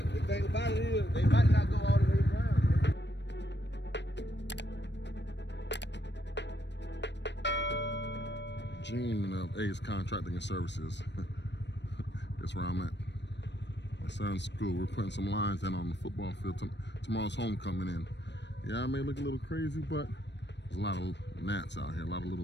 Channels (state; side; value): late; right; 0.51 ms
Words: the thing about it is, they might not go all the way around. Gene of Ace Contracting and Services. That's where I'm at. My son's school. We're putting some lines in on the football field. Tomorrow's homecoming in. Yeah, I may look a little crazy, but there's a lot of gnats out here, a lot of